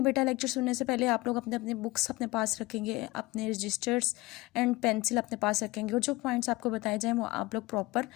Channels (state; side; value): quieter; right; 20.9 dB